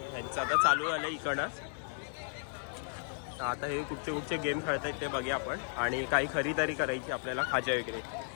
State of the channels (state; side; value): silent; right; digital silence